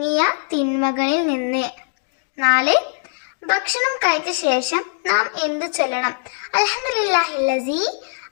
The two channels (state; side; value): silent; right; digital silence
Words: തിന്മകളിൽ നിന്ന്. 4. ഭക്ഷണം കഴിച്ച ശേഷം നാം എന്തു ചൊല്ലണം? അൽഹംദുലില്ലാഹില്ലസീ